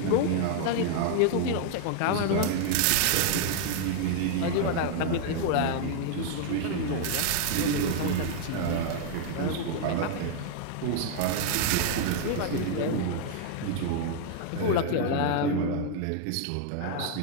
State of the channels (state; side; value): different; both; correlation 0.00